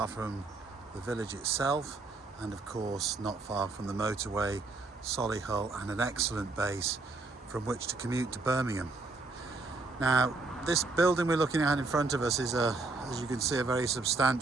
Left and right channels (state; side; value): quieter; left; 3.5 dB